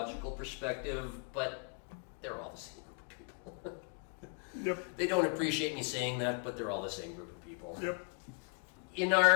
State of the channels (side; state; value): right; quieter; 37.3 dB